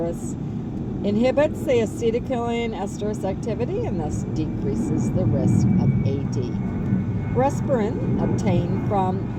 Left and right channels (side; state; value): both; identical; correlation 1.00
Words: inhibits the acetylcholine esterase activity and thus decreases the risk of AD. Rasparin, obtained from